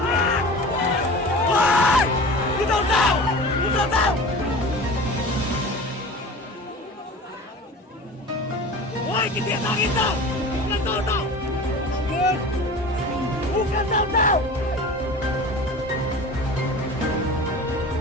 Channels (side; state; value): both; normal; correlation 0.37